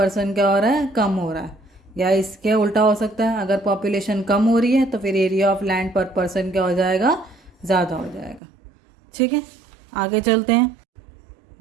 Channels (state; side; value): drops out; left; at 8.4 s